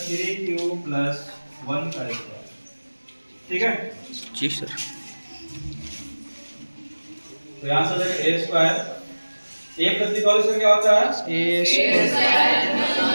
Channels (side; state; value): both; inverted; correlation -1.00